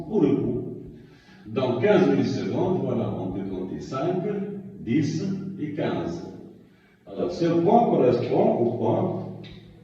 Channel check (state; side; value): identical; both; correlation 1.00